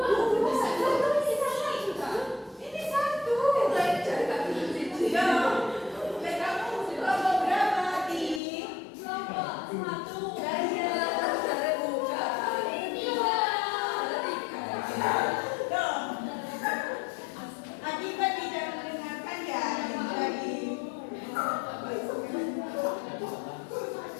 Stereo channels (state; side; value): drops out; right; at 8.4 s